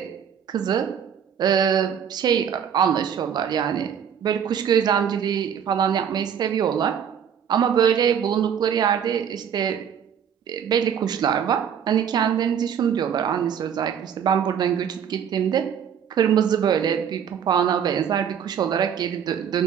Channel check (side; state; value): left; quieter; 8.2 dB